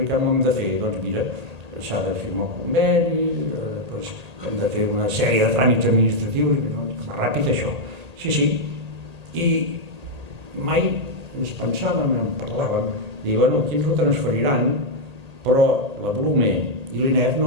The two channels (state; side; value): late; left; 1.8 ms